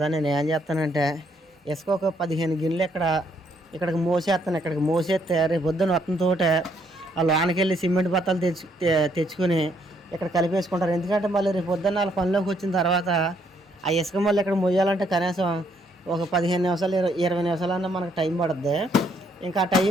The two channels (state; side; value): normal; both; correlation 0.70